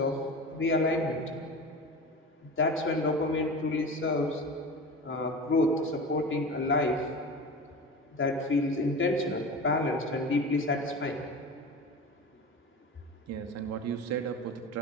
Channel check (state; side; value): normal; both; correlation 0.32